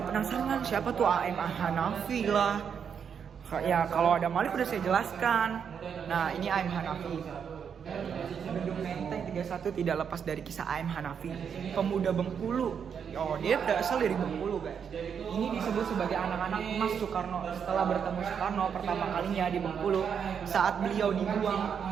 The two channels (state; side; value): quieter; left; 7.3 dB